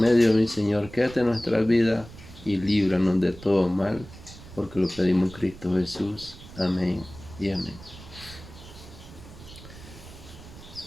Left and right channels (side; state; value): right; noise; rumble, 17 dB below the sound